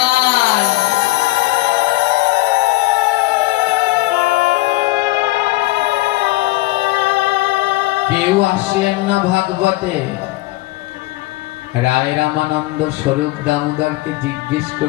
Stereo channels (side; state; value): right; quieter; 19.3 dB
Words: কেউ আসলেন না ভাগবতে। রায় রামানন্দ স্বরূপ দামোদরকে জিজ্ঞেস